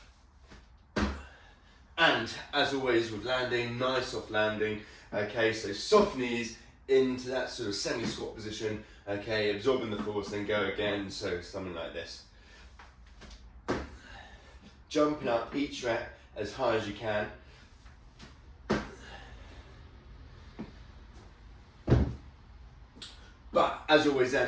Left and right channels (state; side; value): identical; both; correlation 1.00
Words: And as always with landing, nice soft landing. Okay, so soft knees into that sort of semi-squat position, okay, absorbing the force, then go again, so something like this. Jumping up each rep as high as you can. But as always